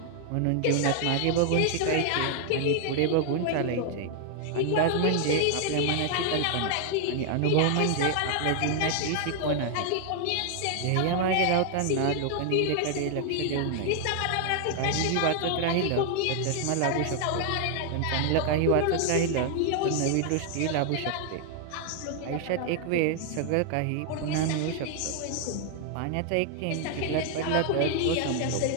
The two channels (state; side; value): different; both; correlation 0.00